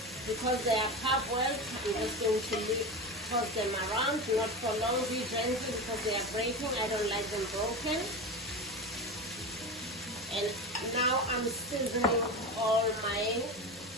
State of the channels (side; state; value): both; normal; correlation 0.23